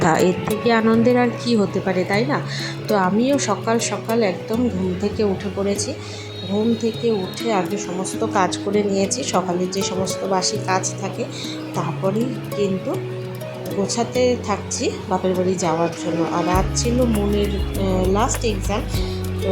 এর থেকে আনন্দের আর কি হতে পারে, তাই না? তো আমিও সকাল সকাল একদম ঘুম থেকে উঠে পড়েছি। ঘুম থেকে উঠে আগে সমস্ত কাজ করে নিয়েছি, সকালের যে সমস্ত বাসি কাজ থাকে, তারপরেই কিন্তু গোছাতে থাকছি বাপের বাড়ি যাওয়ার জন্য। আর আজ ছিল মনের লাস্ট এক্সাম, তো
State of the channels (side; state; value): both; identical; correlation 1.00